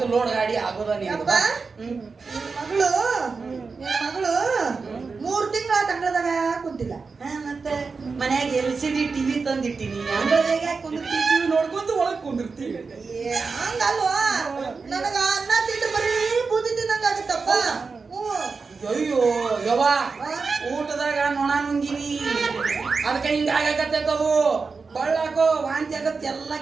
ಲೋಡ್ ಗಾಡಿ ಆಗೋದ ಮಗಳು 3 ತಿಂಗಳ ತಂಗಳದಾಗ ಕುಂತಿಲ್ಲ ಮತ್ತೆ ಮನ್ಯಾಗ LCD TV ತಂದಿಟ್ಟಿನಿ ಅಂಗಳದಾಗ ಕುಂದಿರ್ತೀವಿ ನೋಡ್ಕೊಂತ ಒಳಗ್ ಕುಂದಿರ್ತೀವಿ ಹಂಗಲ್ವಾ ನನಗ ಅನ್ನ ತಿಂದು ಬರೀ ಬೂದಿ ತಿನ್ನಂಗ ಆಗುತ್ತಪ್ಪ ಅಯ್ಯೋ ಯವ್ವ ಊಟದಾಗ ನೊಣ ನುಂಗಿನಿ ಅದಕ್ಕೆ ಹಿಂಗ ಆಗಕತ್ತದು ಬಳ್ಳಾಕೋ ವಾಂತಿ ಆಗತ್ತೆ ಎಲ್ಲ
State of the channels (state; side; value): quieter; left; 4.6 dB